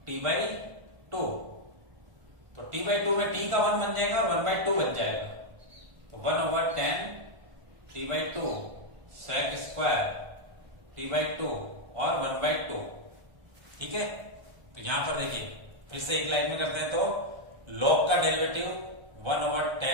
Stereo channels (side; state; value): left; late; 1.3 ms